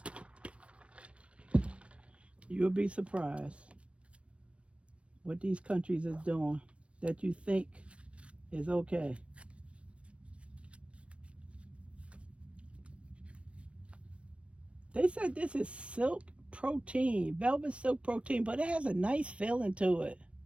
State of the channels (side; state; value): left; late; 0.061 ms